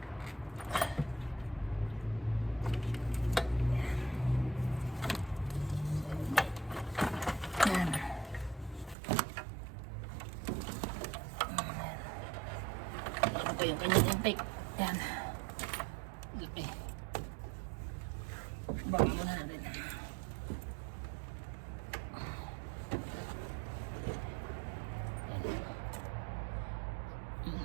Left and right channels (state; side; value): drops out; left; at 9.0 s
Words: Ito yung kanyang intake. Yan. Laki. Baka muna natin.